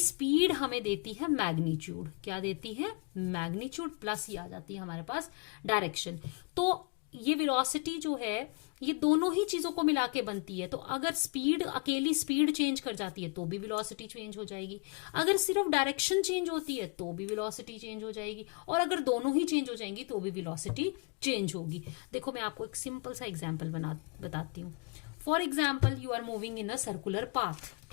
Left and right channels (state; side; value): quieter; right; 35.3 dB